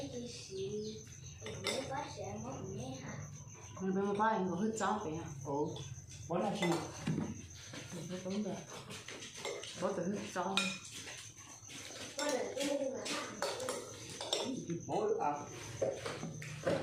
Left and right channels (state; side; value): noise; left; rumble, 30 dB below the sound